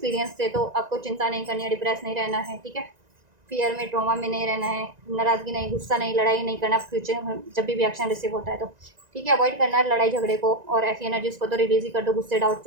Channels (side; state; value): left; late; 1.9 ms